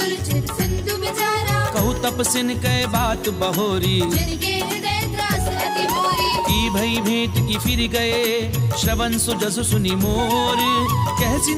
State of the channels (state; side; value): identical; both; correlation 1.00